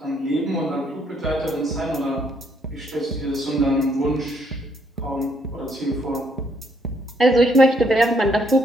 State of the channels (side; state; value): both; normal; correlation 0.70